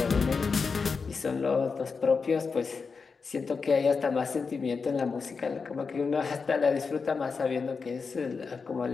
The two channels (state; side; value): quieter; right; 5.0 dB